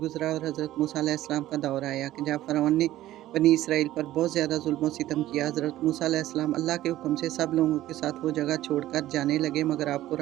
और हज़रत मूसा अलैहिस्सलाम का दौर आया कि जब फ़िरौन ने बनी इसराइल पर बहुत ज़्यादा ज़ुल्म और सितम किया। हज़रत मूसा अलैहिस्सलाम अल्लाह के हुक्म से सब लोगों के साथ वो जगह छोड़कर जाने लगे, मगर आपको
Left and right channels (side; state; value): left; quieter; 14.6 dB